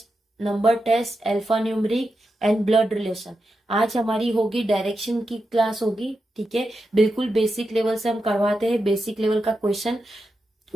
number test, alphanumeric and blood relation. आज हमारी होगी डायरेक्शन की क्लास होगी, ठीक है। बिल्कुल बेसिक लेवल से हम करवाते हैं, बेसिक लेवल का क्वेश्चन,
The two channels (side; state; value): both; normal; correlation 0.88